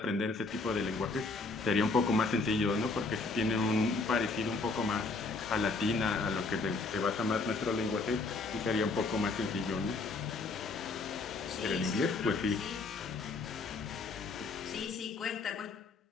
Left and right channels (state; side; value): quieter; right; 3.8 dB